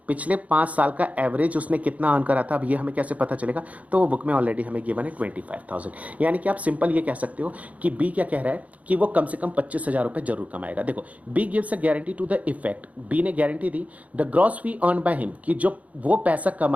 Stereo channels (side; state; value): left; late; 0.069 ms